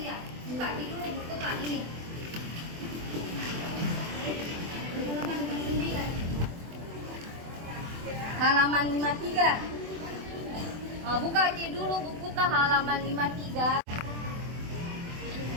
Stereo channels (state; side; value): late; left; 24 ms